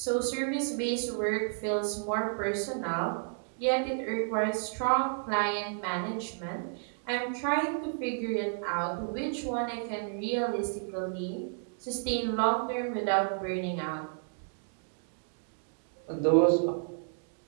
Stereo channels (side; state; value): left; silent; digital silence